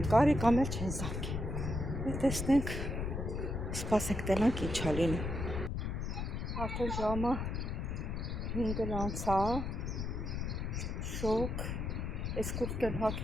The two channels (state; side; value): noise; left; rumble, 3 dB below the sound